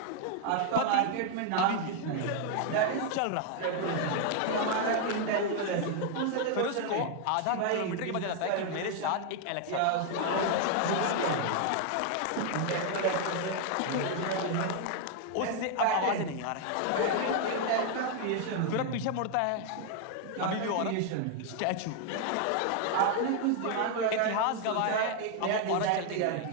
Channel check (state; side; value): different; both; correlation 0.00